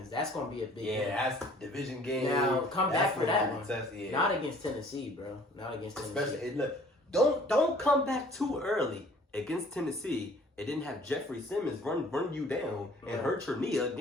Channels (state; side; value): normal; both; correlation 0.54